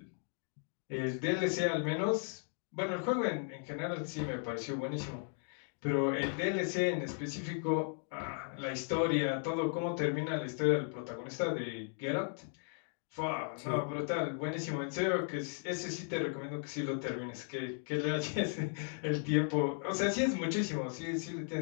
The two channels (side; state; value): right; silent; 54 dB below the other